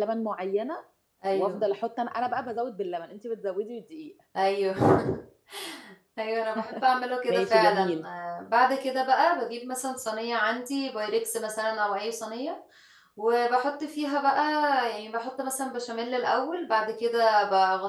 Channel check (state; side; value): identical; both; correlation 1.00